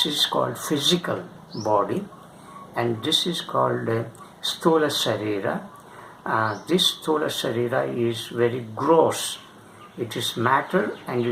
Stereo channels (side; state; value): both; identical; correlation 1.00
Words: is called physical body, and this is called Sthola Sarira. This Sthola Sarira is very gross. It is matter and